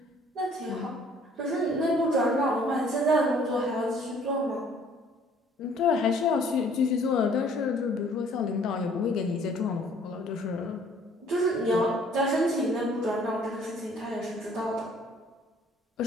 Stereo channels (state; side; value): normal; both; correlation 0.57